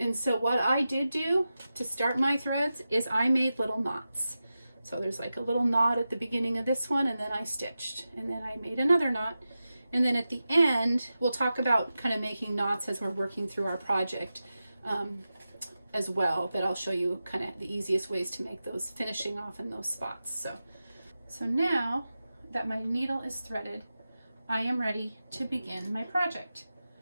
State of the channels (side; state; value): both; inverted; correlation -0.93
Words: so what I did do to start my threads is I made little knots. So there's like a little knot at the beginning of this one, and then I stitched, and then I made another knot. And then at the end, we'll talk about kind of making knots as we're working through our project as well, but I'll show you kind of the easiest ways to make those, finishing off in those spots. So now that my needle is threaded, I am ready to begin my project.